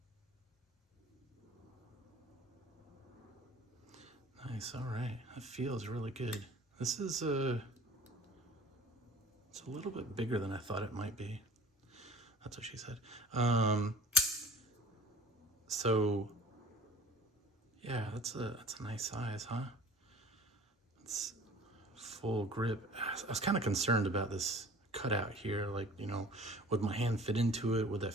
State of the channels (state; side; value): normal; both; correlation 0.45